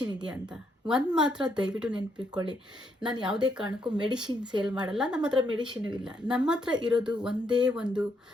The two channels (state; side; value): normal; both; correlation 0.76